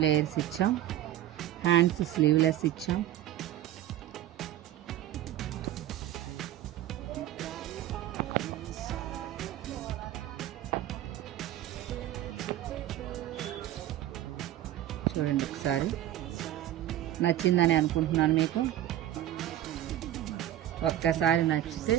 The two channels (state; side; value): quieter; left; 12.8 dB